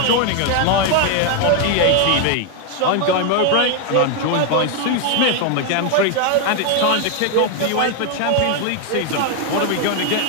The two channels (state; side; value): different; both; correlation 0.01